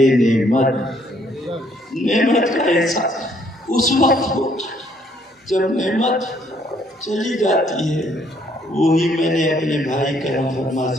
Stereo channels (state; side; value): normal; both; correlation 0.66